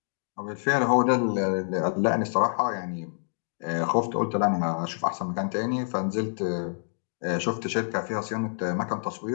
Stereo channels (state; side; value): silent; right; digital silence